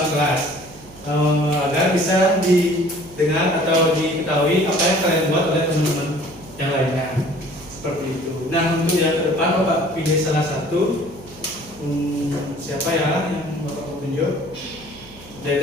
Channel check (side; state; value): right; noise; hum, 20 dB below the sound